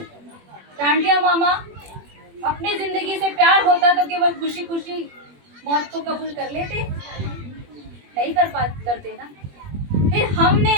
टांटिया मामा अपनी जिंदगी से प्यार होता तो केवल खुशी खुशी मौत को कबूल कर लेते, नहीं करते ना। फिर हमने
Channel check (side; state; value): left; late; 21 ms